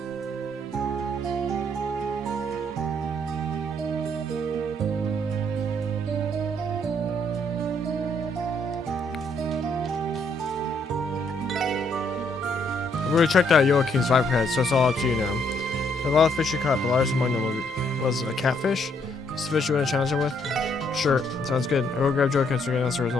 I've already checked out Joaquin's viper head, so it's all up to you now. A lot of fish you caught, the largest among them was a catfish. It's the fish you want to challenge him with? Sure, sounds good. I will grab Joaquin so we can announce the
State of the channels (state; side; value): normal; both; correlation 0.70